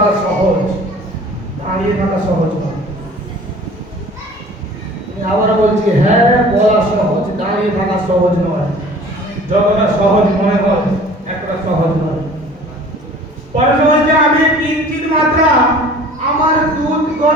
সহজ, দাঁড়িয়ে থাকা সহজ নয়। আমি আবার বলছি, হ্যাঁ বলা সহজ, দাঁড়িয়ে থাকা সহজ নয়। যতটা সহজ মনে হয় এতটা সহজ নয়। পরমেশ্বর বলছে আমি কিঞ্চিত মাত্রা আমার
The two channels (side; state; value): both; normal; correlation 0.46